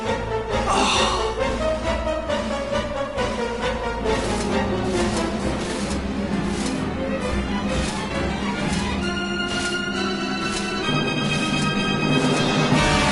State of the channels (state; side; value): identical; both; correlation 1.00